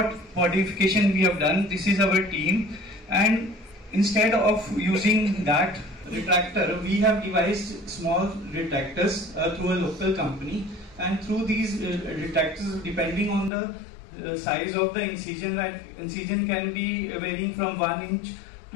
modification we have done. This is our team, and instead of using that retractor, we have devised small retractors through a local company, and through these retractors, depending on the size of the incision, that incision can be varying from 1 inch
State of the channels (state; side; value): drops out; right; at 13.5 s